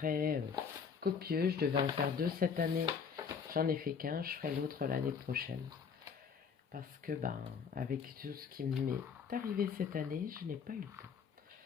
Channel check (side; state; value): right; quieter; 6.3 dB